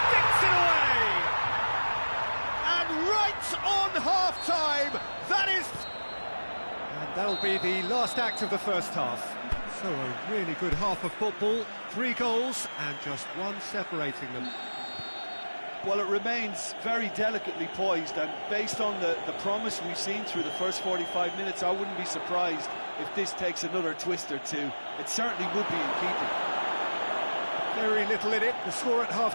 it away. Right on half-time, that is... And that'll be the last act of the first half. So a really good half of football, 3 goals and just one separating them. Well, it remains very delicately poised, and based on the promise we've seen through the first 45 minutes, I wouldn't be surprised if this takes another twist or two. It certainly would be in keeping. Very little in it. The score at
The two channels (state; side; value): inverted; both; correlation -1.00